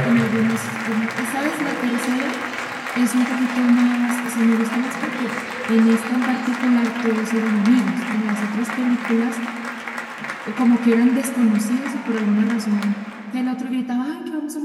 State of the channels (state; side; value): identical; both; correlation 1.00